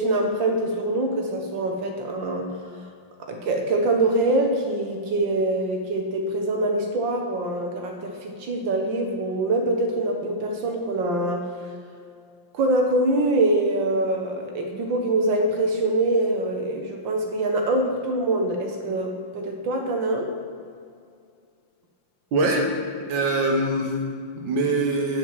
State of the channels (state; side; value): late; left; 5.8 ms